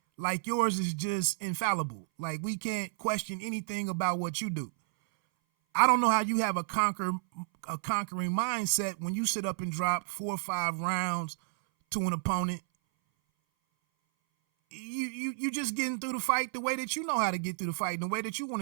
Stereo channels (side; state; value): left; silent; 57 dB below the other